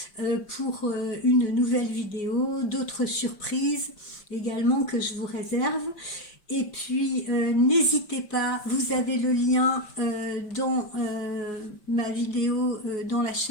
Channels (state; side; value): late; right; 5.1 ms